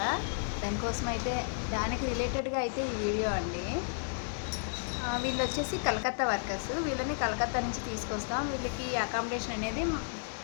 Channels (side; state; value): right; silent; 56 dB below the other